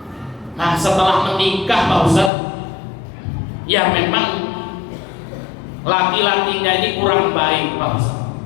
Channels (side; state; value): right; drops out; at 2.3 s